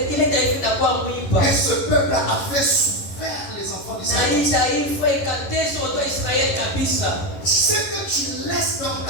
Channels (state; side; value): late; right; 11 ms